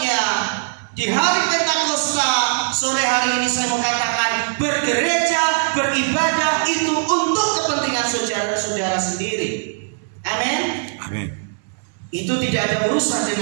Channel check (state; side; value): silent; left; digital silence